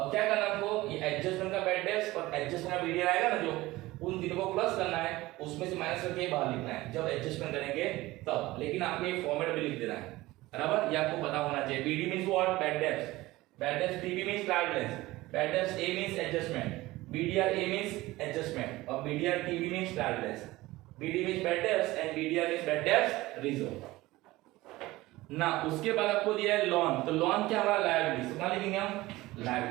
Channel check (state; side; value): quieter; left; 18.8 dB